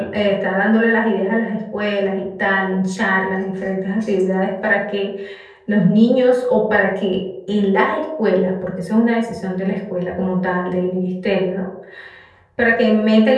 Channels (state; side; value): identical; both; correlation 1.00